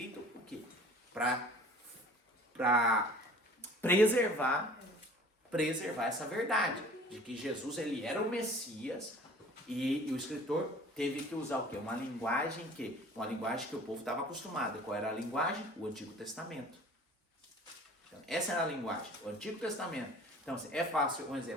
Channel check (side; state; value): both; normal; correlation 0.47